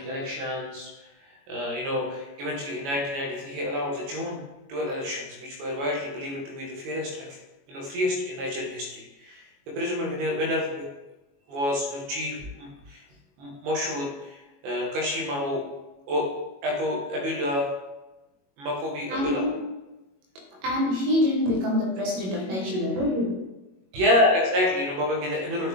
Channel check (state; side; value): late; left; 22 ms